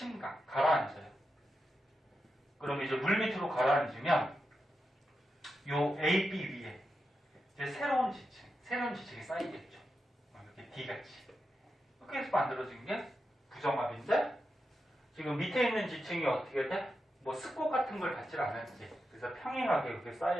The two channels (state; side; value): normal; both; correlation 0.88